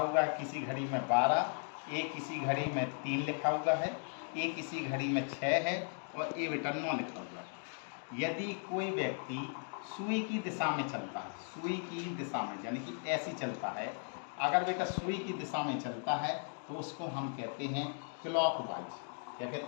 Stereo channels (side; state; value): right; silent; 53 dB below the other